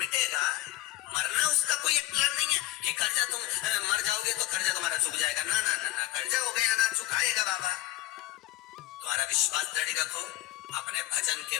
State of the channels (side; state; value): right; quieter; 16.3 dB